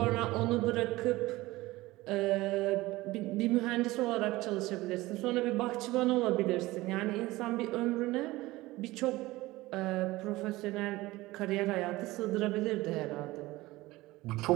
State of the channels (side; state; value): left; quieter; 19.1 dB